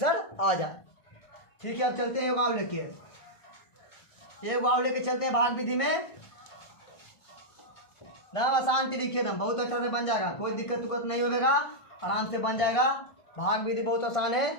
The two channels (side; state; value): right; late; 1.5 ms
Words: आ जाए। ठीक है अब चलते हैं वाव लेके चलते हैं भाग विधि में। नाम आसान तरीके दम बहुत अच्छा से बन जाएगा, कोई दिक्कत उक्कत नहीं होगा, आराम से बन जाएगा। भाग विधि बहुत आसान